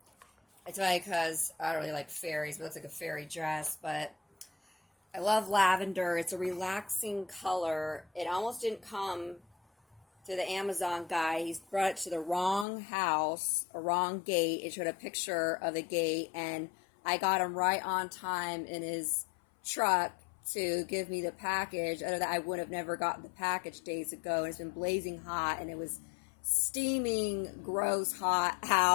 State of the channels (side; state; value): right; drops out; at 12.7 s